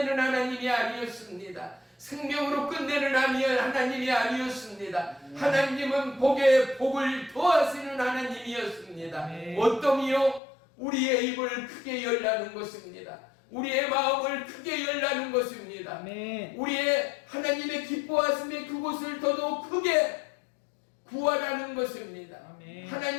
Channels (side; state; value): right; drops out; at 10.4 s